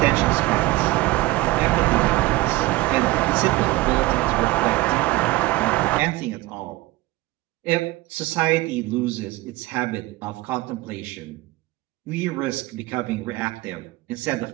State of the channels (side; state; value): left; quieter; 19.4 dB